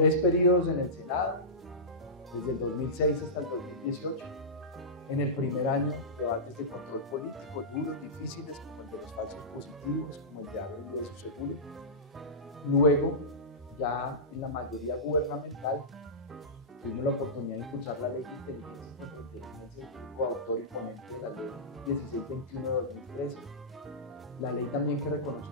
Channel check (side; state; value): both; normal; correlation -0.17